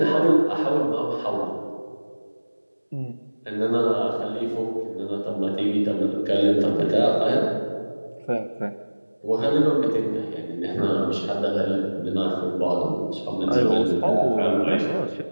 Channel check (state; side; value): inverted; both; correlation -1.00